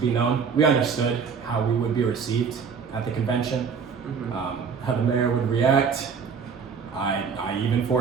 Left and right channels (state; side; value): quieter; left; 6.1 dB